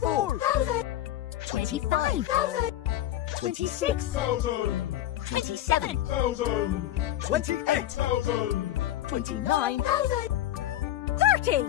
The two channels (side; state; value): right; quieter; 13.2 dB